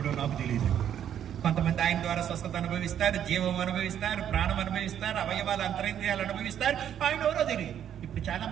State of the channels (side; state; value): left; quieter; 9.7 dB